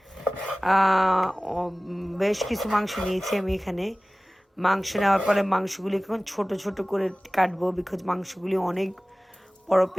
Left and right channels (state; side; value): normal; both; correlation 0.98